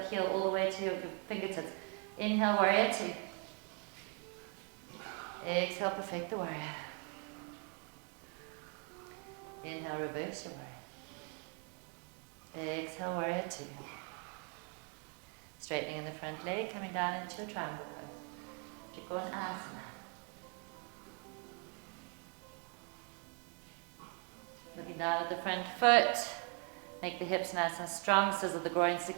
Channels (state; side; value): quieter; left; 38.2 dB